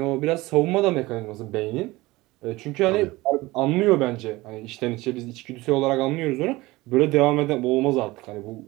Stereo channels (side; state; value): left; quieter; 20.2 dB